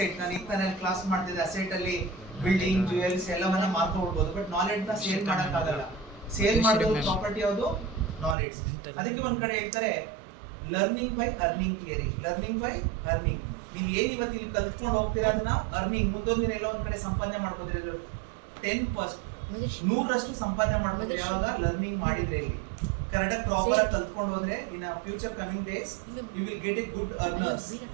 ನಾನು ಈಗ ಕ್ಲಾಸ್ ಮಾಡ್ತಿದ್ದೆ, ಅಸೆಟ್ ಅಲ್ಲಿ ಬಿಲ್ಡಿಂಗ್, ಜ್ಯುವೆಲ್ಸ್ ಎಲ್ಲವನ್ನ ಮಾರ್ಕೊಳ್ಬಹುದು, ಬಟ್ ನಾಲೆಡ್ಜ್ ನ ಸೇಲ್ ಮಾಡಕ್ಕಾಗಲ್ಲ. ಸೇಲ್ ಮಾಡೋದು ಪ್ರಾಪರ್ಟಿ ಯಾವುದು? ನಾಲೆಡ್ಜ್. ಅದಕ್ಕೆ ಒಂದ್ ಕಡೆ ಹೇಳ್ತಾರೆ learning by earning theory. Learning by earning. ನೀವು ಏನ್ ಇವತ್ತು ಇಲ್ಲಿ ಕಲ್ತ್ಕೊಂಡು ಹೋಗ್ತೀರಾ ಅದನ್ನ ಅರ್ನಿಂಗ್ ಮುಂದೊಂದು ದಿನ ಎಲ್ಲ ಒಂದ್ ಕಡೆ ಸಂಪಾದನೆ ಮಾಡ್ಕೋತೀರಿ. 100% ಸಂಪಾದನೆ ಮಾಡ್ಕೋತೀರಿ ಯಾವಾಗ ಲರ್ನಿಂಗ್ ಮಾಡಿದ್ರೆ. ಇಲ್ಲಿ ಕರೆಕ್ಟಾಗಿ ಪ್ರಾಪರ್ ಆಗಿ ಕಲ್ತ್ಕೊಂಡು ಹೋದ್ರೆ in future coming days you will get a good earners.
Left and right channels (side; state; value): left; drops out; at 8.3 s